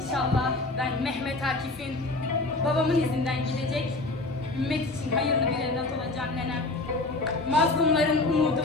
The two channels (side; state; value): right; quieter; 3.1 dB